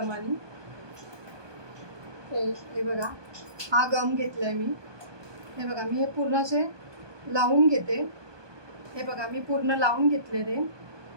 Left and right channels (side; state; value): left; late; 1.2 ms